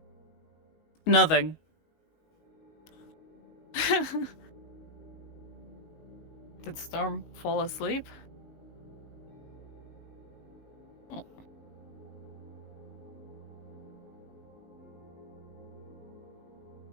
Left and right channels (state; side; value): late; right; 19 ms